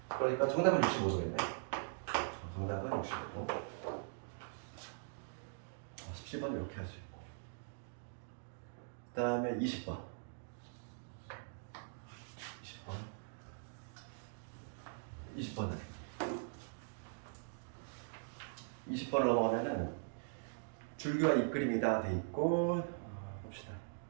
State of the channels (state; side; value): silent; left; digital silence